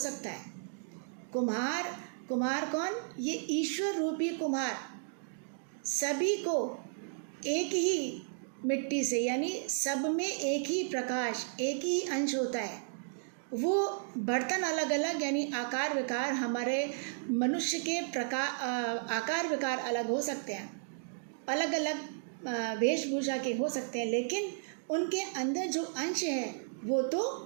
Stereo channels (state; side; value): silent; left; digital silence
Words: है। कुम्हार कौन? ये ईश्वर रूपी कुम्हार सभी को एक ही मिट्टी से, यानी सब में एक ही प्रकाश एक ही अंश होता है। वो बर्तन अलग अलग यानी आकार विकार, हमारे मनुष्य के आकार विकार अलग हो सकते हैं, अलग अलग वेशभूषा के हो सकते हैं, लेकिन उनके अंदर जो अंश है वो तो